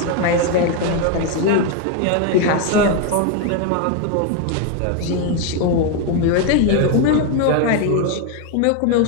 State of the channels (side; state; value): both; different; correlation 0.01